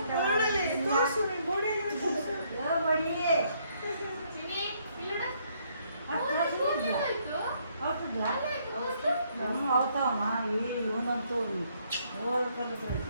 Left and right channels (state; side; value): inverted; both; correlation -0.70